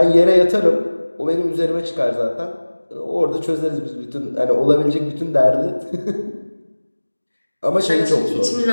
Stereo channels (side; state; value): both; inverted; correlation -1.00